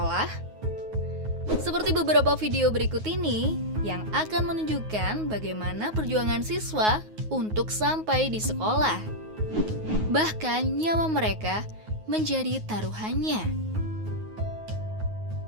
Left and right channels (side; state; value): left; late; 9.4 ms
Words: Seperti beberapa video berikut ini yang akan menunjukkan bagaimana perjuangan siswa untuk sampai di sekolah. Bahkan nyawa mereka menjadi taruhannya.